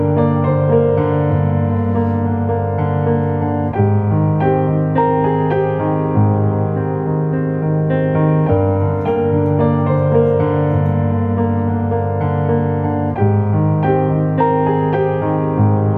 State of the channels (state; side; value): identical; both; correlation 1.00